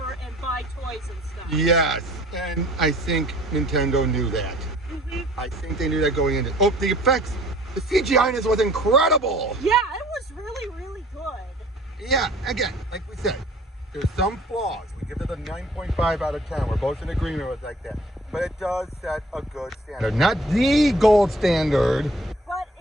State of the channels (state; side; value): normal; both; correlation 0.53